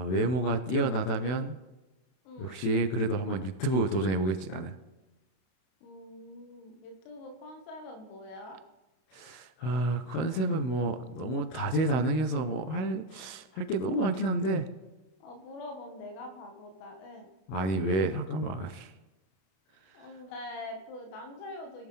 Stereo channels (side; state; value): right; late; 32 ms